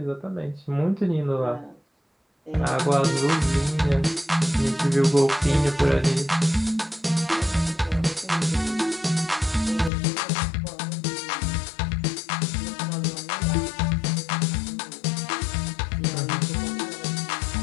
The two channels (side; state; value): right; drops out; at 9.9 s